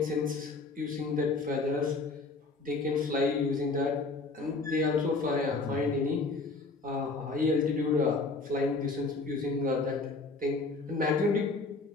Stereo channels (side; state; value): right; quieter; 3.7 dB